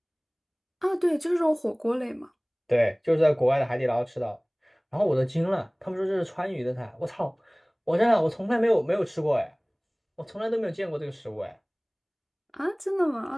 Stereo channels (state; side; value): identical; both; correlation 1.00